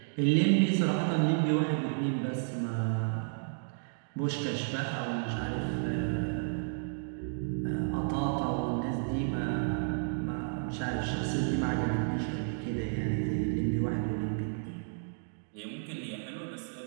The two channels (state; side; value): silent; left; digital silence